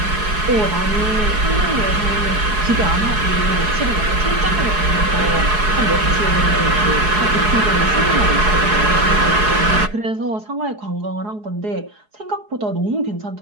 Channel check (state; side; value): late; left; 4.7 ms